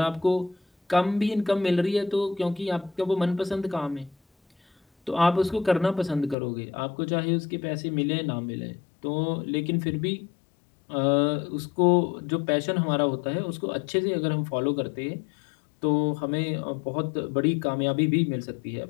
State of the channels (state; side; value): drops out; right; at 6.4 s